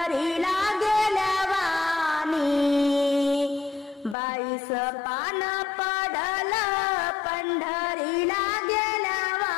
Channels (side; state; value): right; drops out; at 4.2 s